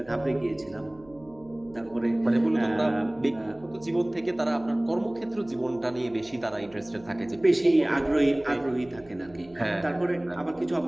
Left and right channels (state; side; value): noise; right; hum, 26 dB below the sound